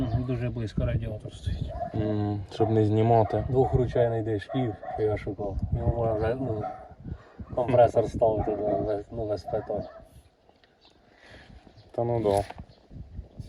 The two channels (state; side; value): identical; both; correlation 1.00